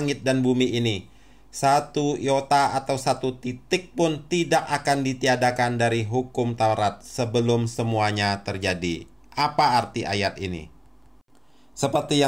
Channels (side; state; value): both; identical; correlation 1.00